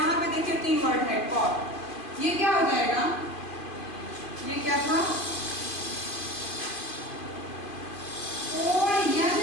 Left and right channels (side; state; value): right; late; 2.4 ms